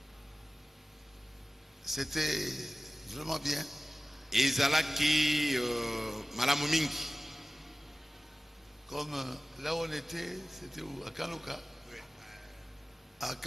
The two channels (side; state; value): both; normal; correlation 0.97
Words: C'était vraiment bien. Ezalaki malamu mingi. Comme là où on était, c'était où? À Kaloka. À